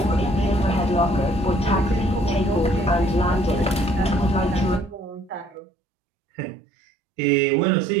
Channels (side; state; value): left; drops out; at 5.6 s